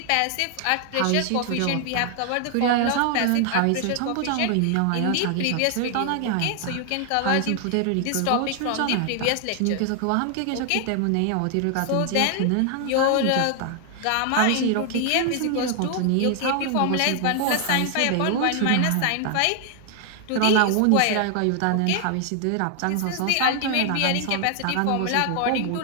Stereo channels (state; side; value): different; both; correlation 0.00